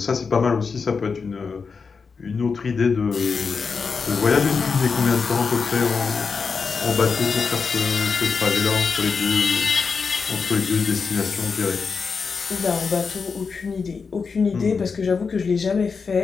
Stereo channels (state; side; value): quieter; right; 5.2 dB